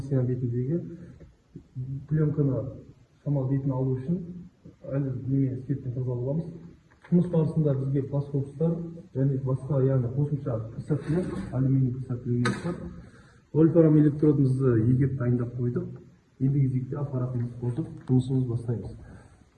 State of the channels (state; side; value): identical; both; correlation 1.00